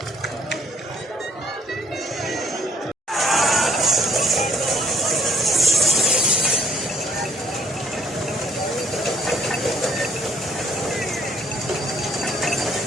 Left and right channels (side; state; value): both; normal; correlation 0.63